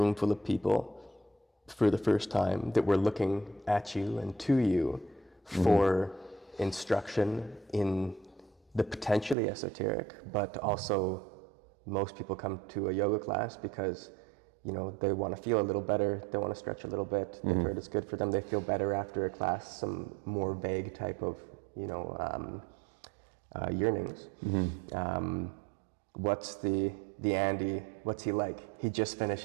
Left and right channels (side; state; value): left; drops out; at 9.3 s